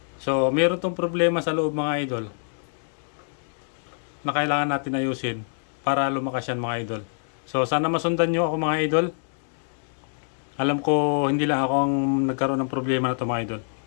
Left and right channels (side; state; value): right; silent; digital silence